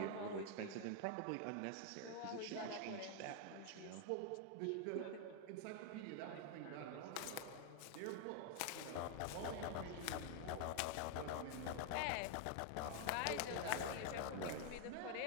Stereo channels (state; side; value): different; both; correlation 0.00